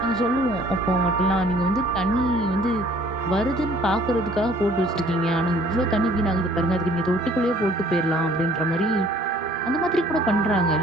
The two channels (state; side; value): normal; both; correlation 0.56